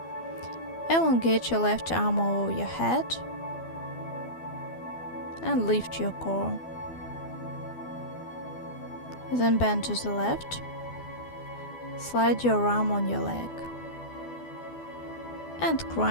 Elongate your left arm over your head and lift your core. Then bend to the left. Slide your arm on your leg. And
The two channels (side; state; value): right; late; 12 ms